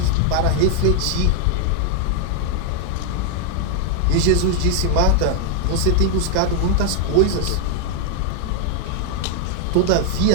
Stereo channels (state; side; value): different; both; correlation 0.00